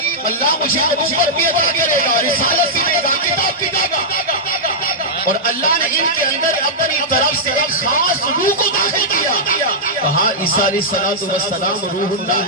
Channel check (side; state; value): both; normal; correlation -0.09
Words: اللہ مجھے نبوت بھی عطا کرے گا، رسالت بھی دے گا، کتاب بھی دے گا، اور اللہ نے ان کے اندر اپنی طرف سے ایک خاص روح کو داخل کیا۔ کہا عیسیٰ علیہ السلام روح اللہ